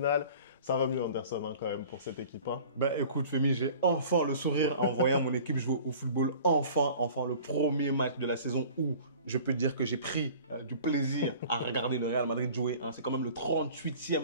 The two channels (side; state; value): both; inverted; correlation -0.46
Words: Ça va mieux Anderson quand même pour cette équipe. Ben écoute Femi, j'ai enfin le sourire en voyant mon équipe jouer au football. Enfin le premier match de la saison où je peux dire que j'ai pris du plaisir à regarder le Real Madrid jouer. C'est quand même le